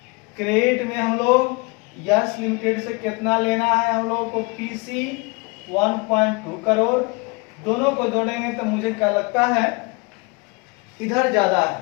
क्रेडिट में हम लोग यस लिमिटेड से कितना लेना है हम लोगों को, पीसी 1.2 करोड़। दोनों को जोड़ेंगे तो मुझे क्या लगता है इधर ज्यादा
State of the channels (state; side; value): quieter; right; 28.6 dB